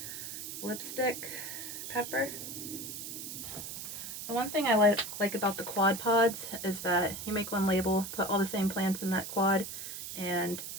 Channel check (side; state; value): right; noise; hiss, 8 dB below the sound